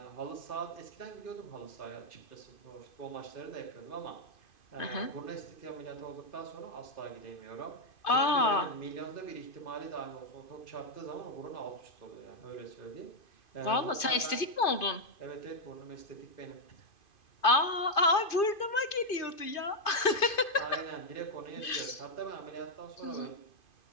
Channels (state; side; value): late; right; 2.5 ms